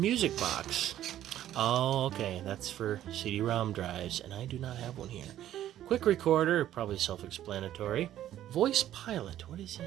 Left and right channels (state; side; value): quieter; left; 12.3 dB